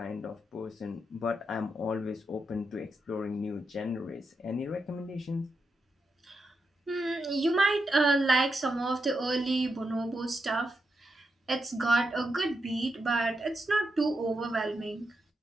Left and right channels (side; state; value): both; normal; correlation 0.86